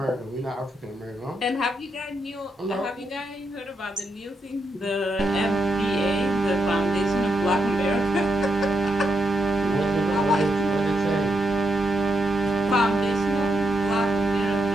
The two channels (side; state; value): both; normal; correlation 0.82